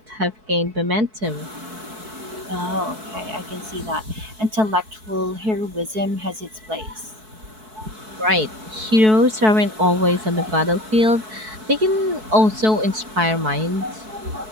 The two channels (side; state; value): left; late; 4.6 ms